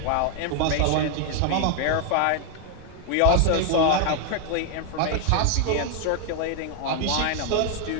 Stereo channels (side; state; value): both; different; correlation 0.00